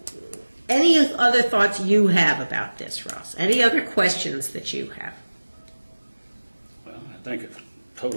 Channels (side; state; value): both; inverted; correlation -1.00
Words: Any other thoughts you have about this, Ross? Any other questions that you have? Well, I think it's